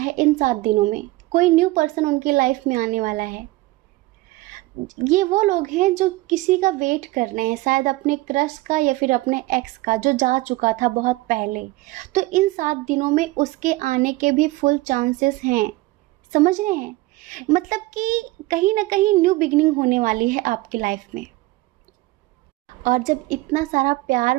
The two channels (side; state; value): left; quieter; 19.8 dB